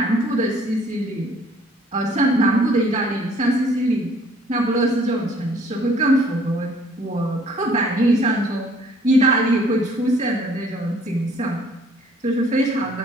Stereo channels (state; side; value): normal; both; correlation 0.58